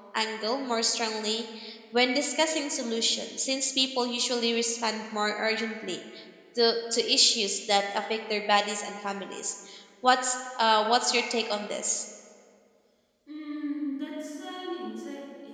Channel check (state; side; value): identical; both; correlation 1.00